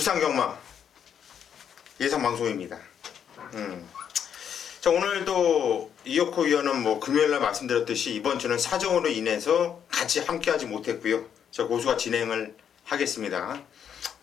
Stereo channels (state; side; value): quieter; right; 8.3 dB